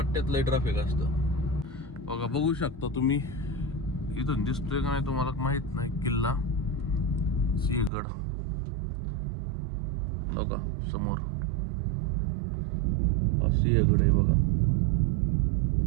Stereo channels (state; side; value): drops out; left; at 7.9 s